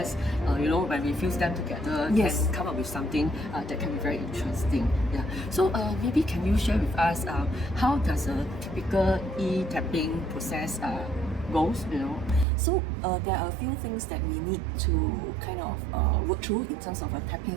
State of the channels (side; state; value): left; drops out; at 12.5 s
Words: when we fuse them together, can come up with something that can be very interesting. Yeah. So maybe can you share with us how does a typical e-tapping process goes? So there are a few things that we need to kind of work through in terms of a